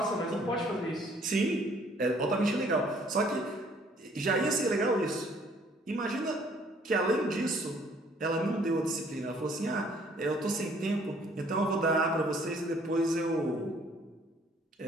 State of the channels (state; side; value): normal; both; correlation 0.60